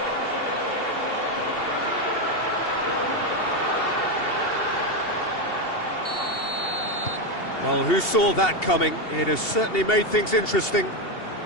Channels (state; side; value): late; right; 2.8 ms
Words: Well, who saw that coming? It has certainly made things interesting.